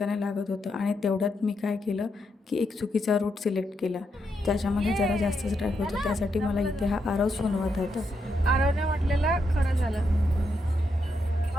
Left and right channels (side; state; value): both; normal; correlation 0.81